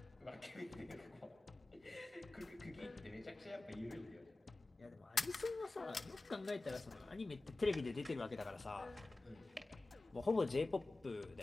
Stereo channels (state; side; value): quieter; right; 3.0 dB